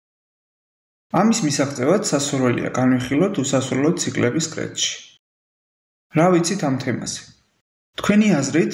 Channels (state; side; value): identical; both; correlation 1.00